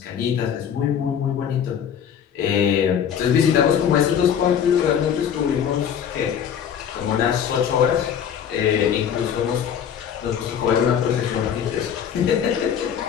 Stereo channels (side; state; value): right; quieter; 8.5 dB